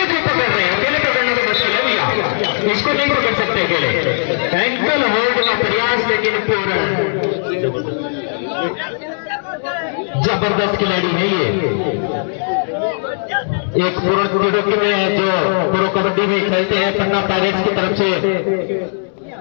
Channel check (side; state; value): right; silent; digital silence